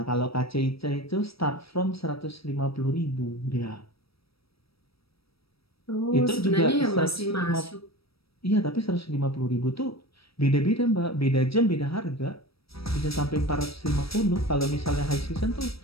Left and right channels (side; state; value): right; late; 0.76 ms